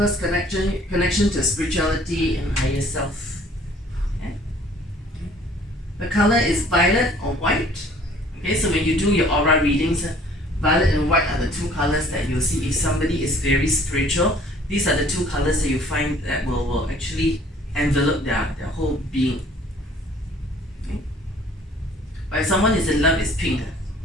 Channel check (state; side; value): normal; both; correlation 0.55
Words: connection to spirituality and higher self. Okay, the color is violet or white. Okay, so when you do your aura readings, violet and white are the two colors that you'll see if somebody is very spiritual. These are the two colors that you find that will actually envelop their whole being. Okay? But if someone is in love, it's pink.